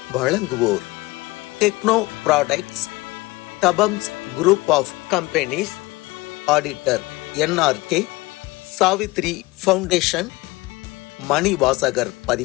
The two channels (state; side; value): quieter; right; 21.6 dB